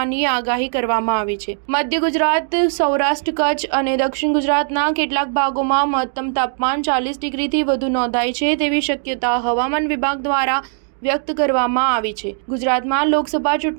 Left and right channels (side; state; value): left; silent; digital silence